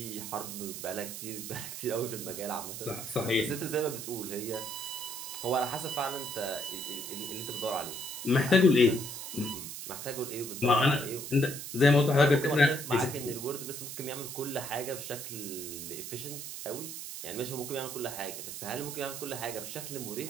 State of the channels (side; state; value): right; noise; hiss, 8 dB below the sound